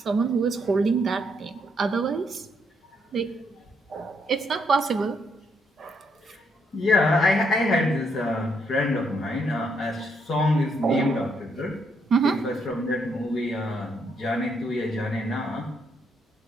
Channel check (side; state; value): both; normal; correlation 0.75